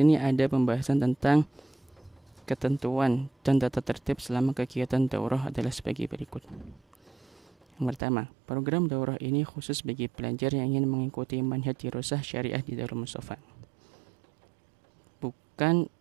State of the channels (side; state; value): left; drops out; at 8.0 s